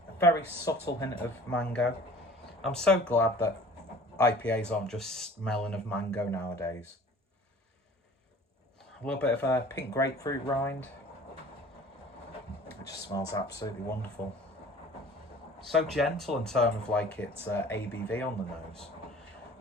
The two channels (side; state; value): both; normal; correlation 0.46